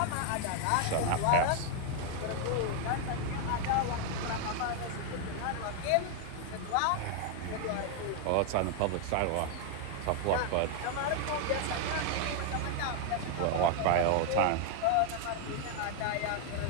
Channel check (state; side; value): different; both; correlation 0.00